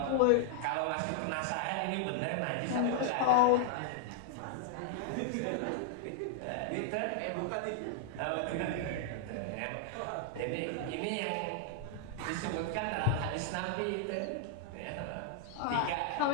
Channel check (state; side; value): different; both; correlation -0.01